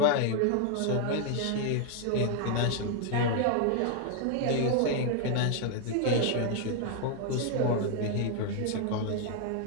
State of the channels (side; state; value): both; different; correlation 0.00